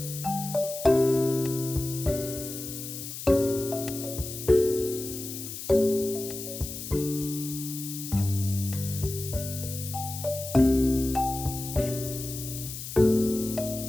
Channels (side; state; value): left; noise; hiss, 9 dB below the sound